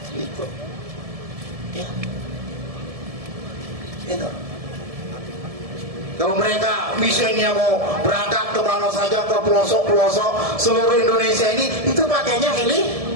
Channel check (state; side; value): late; left; 1.7 ms